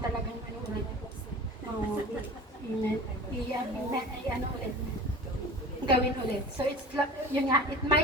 ulit. Ulit. Gawin ulit. So it's yun nga, it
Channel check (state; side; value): normal; both; correlation 0.38